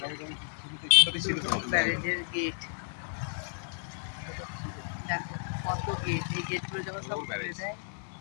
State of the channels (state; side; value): silent; right; digital silence